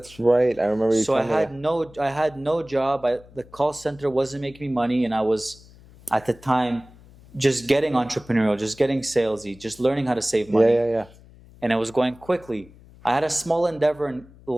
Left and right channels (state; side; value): noise; left; hum, 23 dB below the sound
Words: right. I remember you. So I telling me. had no job. The call center wasn't making me money, and I was at the time just getting entrepreneurial, just getting salesy, just learning how to save money. Yeah. And it was going quickly. I had a small endeavor in